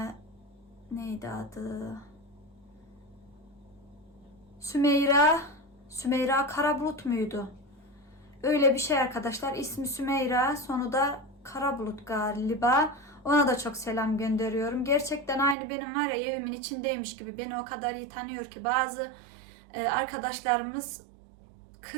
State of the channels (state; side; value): drops out; left; at 15.6 s